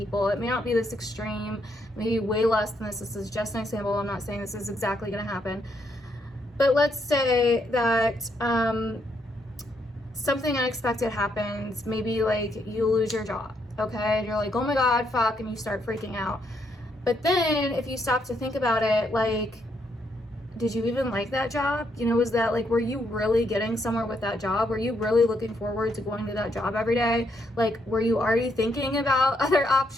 It may not be this extreme, maybe way less than this. This is just an example. I'm not saying this is exactly going to happen. But let's say that something unexpected happens. Maybe like you lose your job, okay? And you're like, oh my God, fuck, and you start freaking out. But then if you stop to think about it, like, did you even like that job? You know, was that like, were you really getting somewhere with that job? Were you really looking forward to going to that job every day? Like, were you already thinking about other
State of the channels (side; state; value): both; normal; correlation 0.76